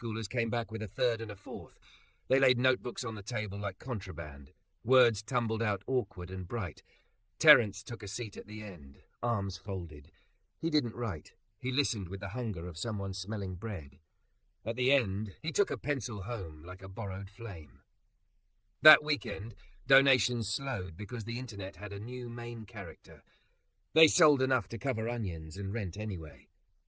came back with a third and a fourth. They laid notebooks on the table like contraband. Words tumbled out awkward and bright. Terence took a seat at the end, arms folded. He didn't write. He listened with the hunger of someone smelling bread. At the end, he took a pencil home like a borrowed flame. That weekend, donations slowed because the internet had a new main character. They sold enough to cover onions and rent anyway.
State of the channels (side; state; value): both; identical; correlation 1.00